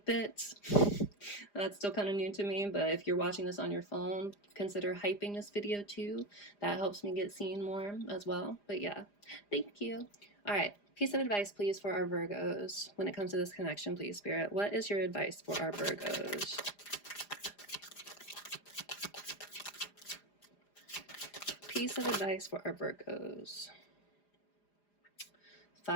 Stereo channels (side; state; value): right; late; 4.9 ms